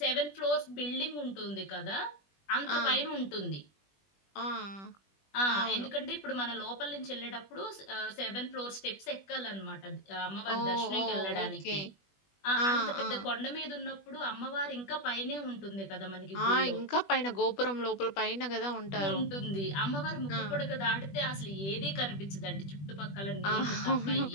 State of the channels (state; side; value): late; right; 20 ms